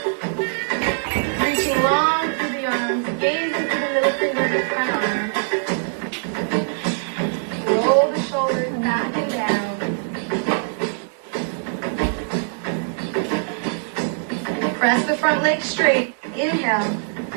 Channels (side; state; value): left; silent; digital silence